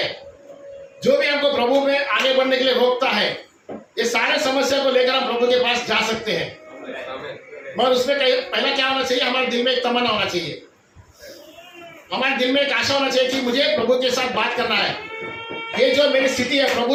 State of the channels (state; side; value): identical; both; correlation 1.00